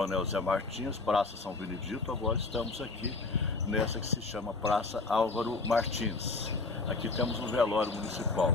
Zé Martins, Praça São Benedito. Agora estamos aqui nessa que se chama Praça Álvaro Martins. Aqui temos um velório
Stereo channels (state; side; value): quieter; right; 3.7 dB